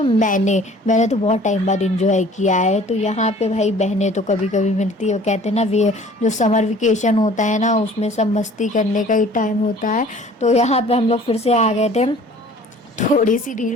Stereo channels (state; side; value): normal; both; correlation 0.50